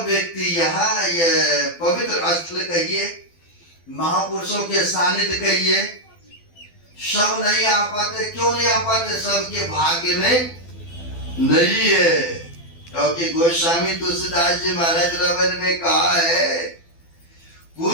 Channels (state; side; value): late; right; 12 ms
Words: व्यक्ति यहाँ ये पवित्र स्थल कहिए, महापुरुषों के सानिध्य कहिए, सब नहीं आ पाते। क्यों नहीं आ पाते? सबके भाग्य में नहीं है। क्योंकि गोस्वामी तुलसीदास जी महाराज रवन में कहा है,